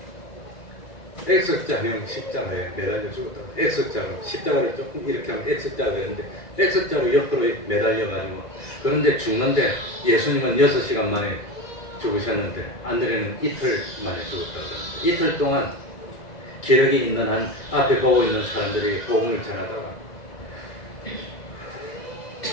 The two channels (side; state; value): right; late; 1.9 ms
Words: X자형 십자가에 매달려 죽었다고. X자로 십자가를 조금 이렇게 하면 X자가 되는데 X자로 옆으로 매달려가지고, 그런데 죽는데 예수님은 6시간 만에 죽으셨는데 안드레는 이틀 만에 죽었다고. 이틀 동안 기력이 있는 한 앞에 보고 있는 사람들이 복음을 전하다가